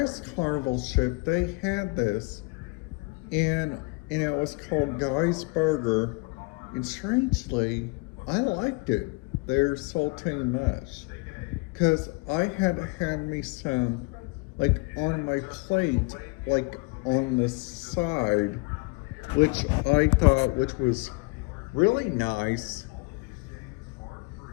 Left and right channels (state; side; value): quieter; right; 28.4 dB